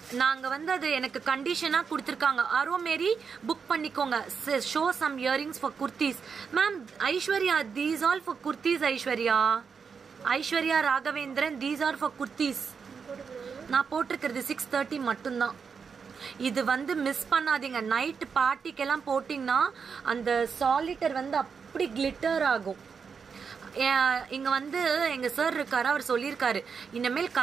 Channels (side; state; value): left; quieter; 5.9 dB